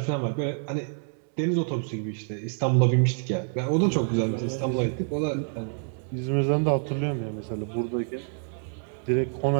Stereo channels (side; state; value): left; silent; 56 dB below the other